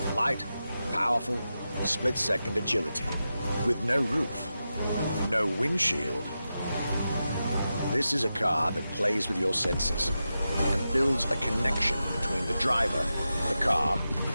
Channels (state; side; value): inverted; both; correlation -0.91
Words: Light, powerful, split-second agility, with no roof, no windshield. This is a car that plays with your senses and builds a connection between the driver, the car,